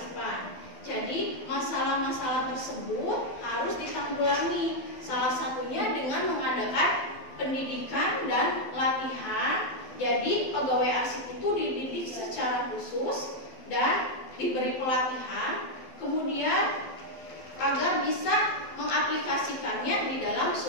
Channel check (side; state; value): right; late; 12 ms